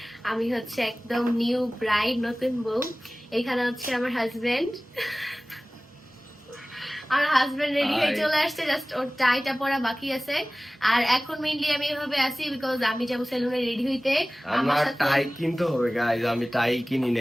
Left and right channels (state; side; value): normal; both; correlation 0.98